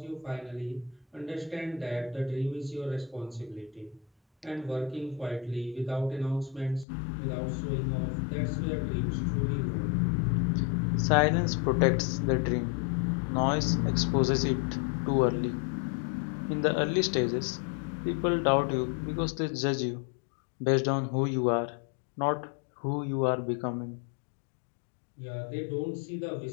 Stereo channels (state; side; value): drops out; right; at 6.9 s